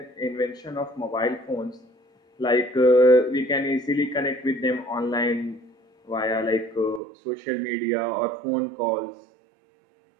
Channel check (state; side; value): drops out; left; at 7.0 s